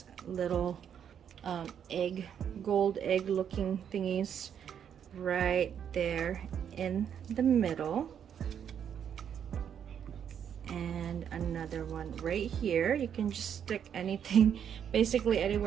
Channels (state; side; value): quieter; left; 8.5 dB